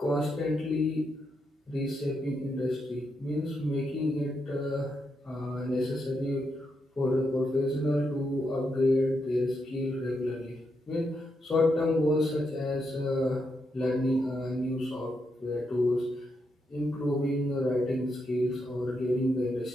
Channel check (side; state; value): both; normal; correlation 0.82